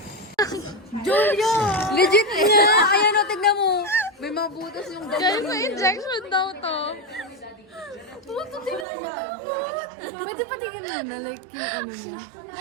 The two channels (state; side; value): drops out; left; at 8.8 s